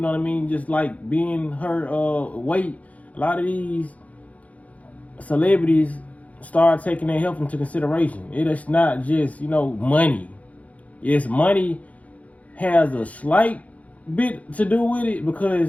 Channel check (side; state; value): right; late; 0.069 ms